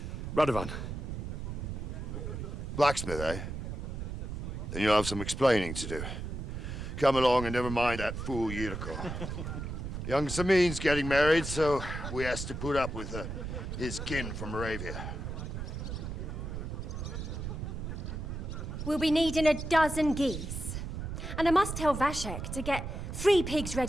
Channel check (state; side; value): noise; right; rumble, 5 dB below the sound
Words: Radovan. Blacksmith, eh? Then you'll have some explaining to do. Come along and never mind that fool Yurko. Young Semine's getting married, so we has to put up with his kin from Moravia. We'll be needing a dozen geese. And I must tell Vashek to get 3 pigs